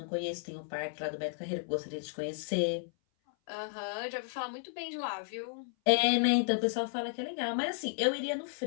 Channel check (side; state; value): right; silent; 55 dB below the other